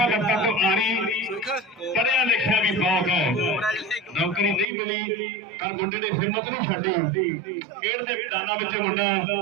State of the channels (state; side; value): drops out; left; at 4.7 s